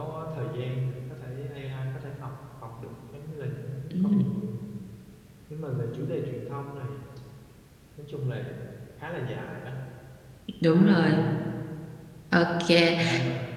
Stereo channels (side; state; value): both; identical; correlation 1.00